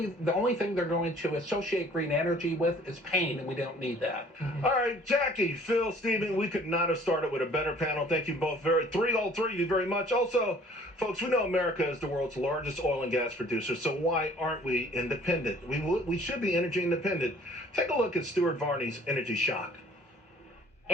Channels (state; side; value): normal; both; correlation 0.53